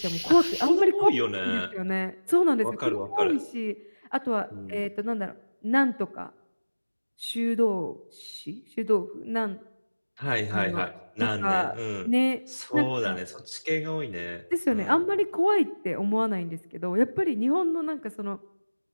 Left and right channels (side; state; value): both; inverted; correlation -1.00